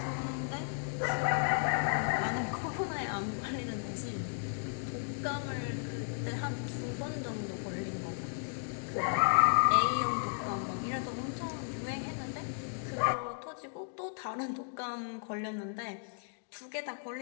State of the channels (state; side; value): silent; right; digital silence